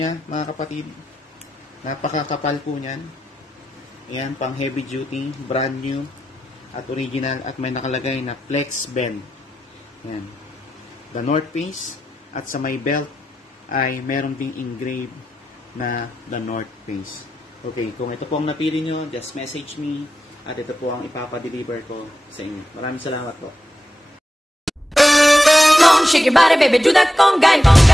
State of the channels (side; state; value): both; normal; correlation 0.89